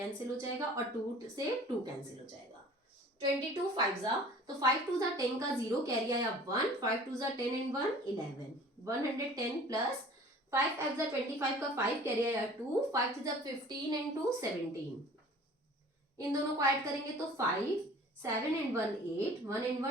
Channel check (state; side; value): normal; both; correlation 0.47